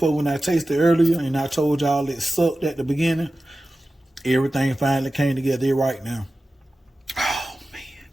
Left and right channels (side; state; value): both; normal; correlation 0.95